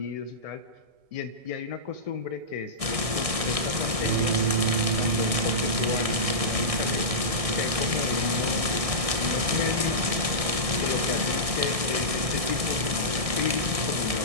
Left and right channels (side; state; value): left; late; 1.6 ms